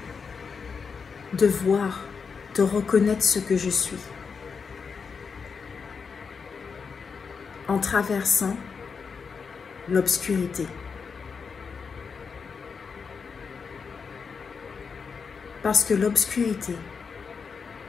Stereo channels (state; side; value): quieter; right; 5.6 dB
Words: de voir, de reconnaître ce que je suis, en traversant l'obscurité. Parce que l'obscurité